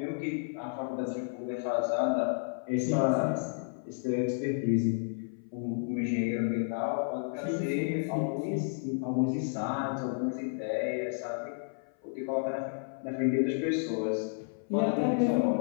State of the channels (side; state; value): right; silent; 57 dB below the other